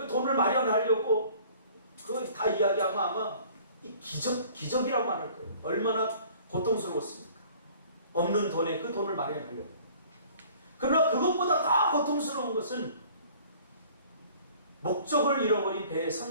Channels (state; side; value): inverted; both; correlation -0.51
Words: 돈을 마련하려고 그거 다 이야기하면 아마 이 기적이라고 말할 거예요. 얼마나 고통스러웠습니까? 없는 돈에 그 돈을 마련하려고. 그러나 그것보다 더 고통스러운 것은 목적을 잃어버린 배의